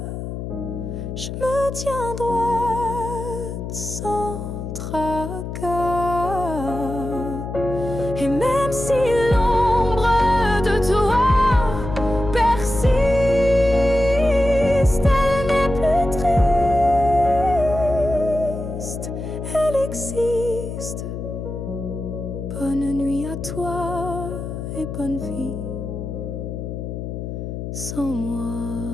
je me tiens droite sans tracas. Et même si bonne nuit à toi et bonne vie sans moi.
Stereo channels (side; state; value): left; noise; hum, 6 dB below the sound